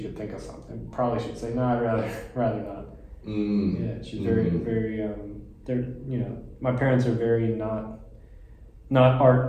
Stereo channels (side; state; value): both; identical; correlation 1.00